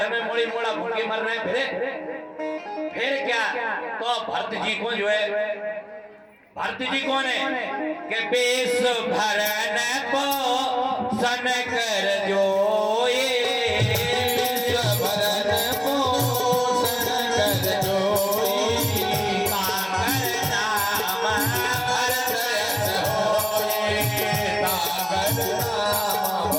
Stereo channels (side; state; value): both; identical; correlation 1.00